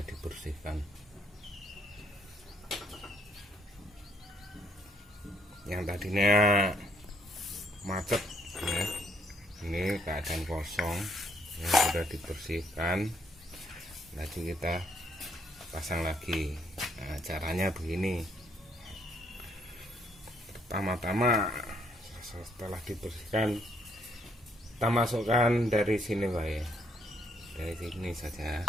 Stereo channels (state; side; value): normal; both; correlation 0.70